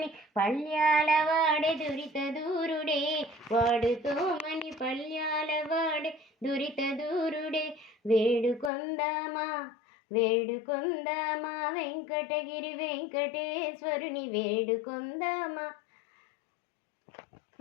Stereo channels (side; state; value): right; drops out; at 8.7 s